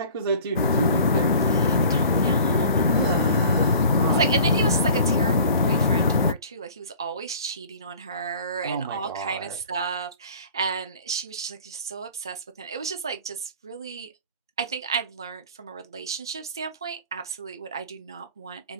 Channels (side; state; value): both; inverted; correlation -0.45